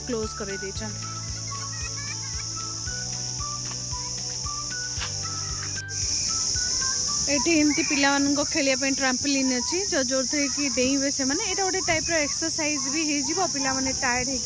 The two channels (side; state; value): both; identical; correlation 1.00